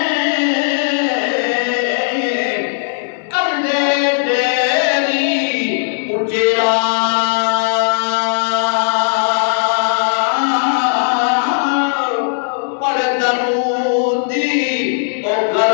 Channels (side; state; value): right; silent; digital silence